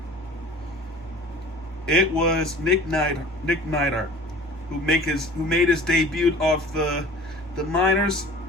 It was Nick Neidhart, who made his debut off the minors.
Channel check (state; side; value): normal; both; correlation 0.44